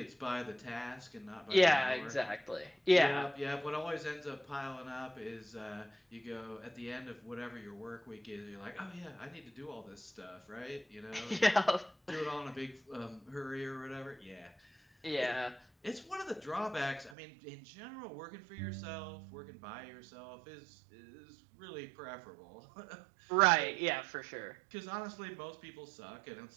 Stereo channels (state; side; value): drops out; left; at 17.2 s